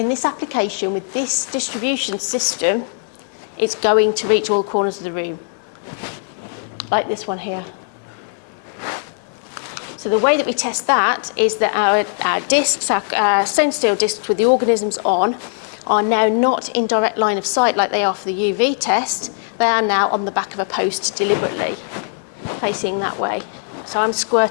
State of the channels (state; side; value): silent; right; 55 dB below the other